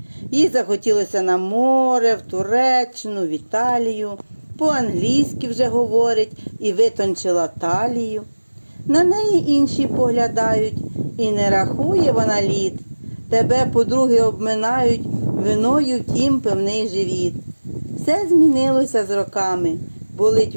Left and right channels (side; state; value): both; inverted; correlation -1.00